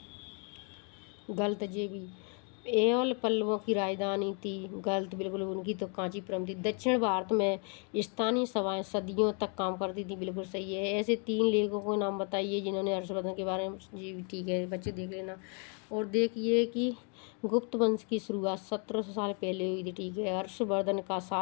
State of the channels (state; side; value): quieter; right; 38.7 dB